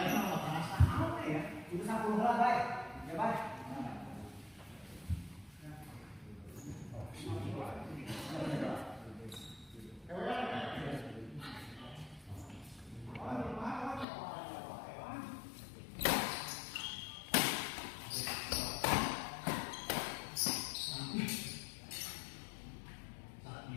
sama perasa. Apa ya? Itu 10 lah, baik. Ya, baik.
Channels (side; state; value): right; drops out; at 14.1 s